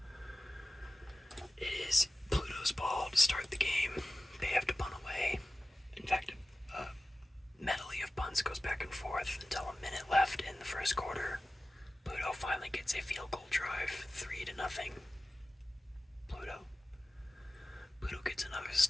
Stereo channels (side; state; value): both; normal; correlation 0.96